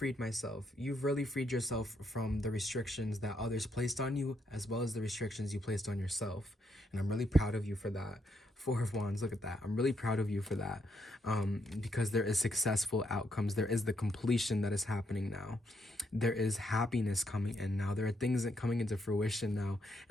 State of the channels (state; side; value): normal; both; correlation 0.77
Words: myself. You've really freed yourself from the restrictions that others placed on you, as well as the restrictions you placed on yourself. And I'm really proud of you for that. Four of Wands, look at that. I'm really proud of you for that. Because there is successful outcomes. There is the completion that is happening now. There is happiness coming in now. There are things that coming into fruition now.